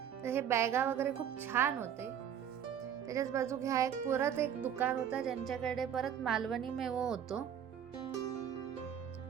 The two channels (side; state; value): left; quieter; 9.0 dB